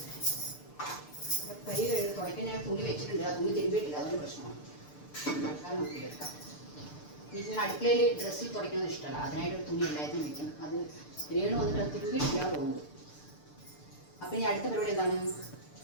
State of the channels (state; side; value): late; right; 6.8 ms